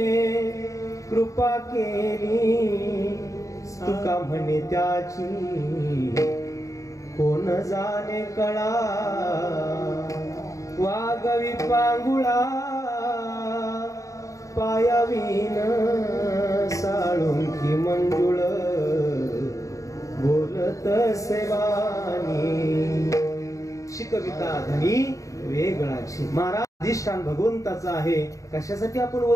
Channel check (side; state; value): right; late; 0.16 ms